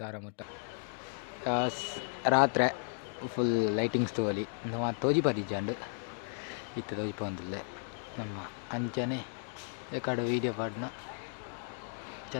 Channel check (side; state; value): right; silent; 55 dB below the other